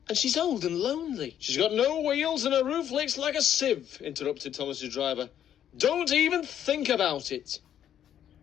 And she's old and lonely." "She's got no wheels and her roof leaks like a sieve," interrupted Thomas's driver. "Don't even think about it."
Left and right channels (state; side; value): quieter; right; 10.1 dB